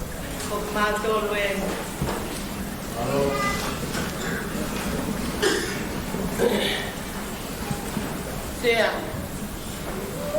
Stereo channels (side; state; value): both; identical; correlation 1.00